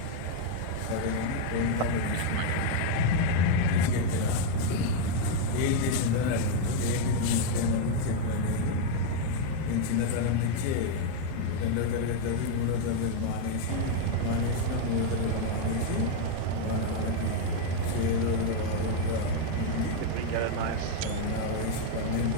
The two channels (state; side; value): different; both; correlation 0.00